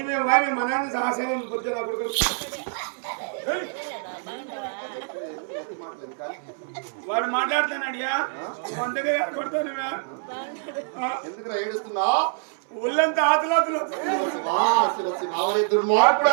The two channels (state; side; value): silent; left; 61 dB below the other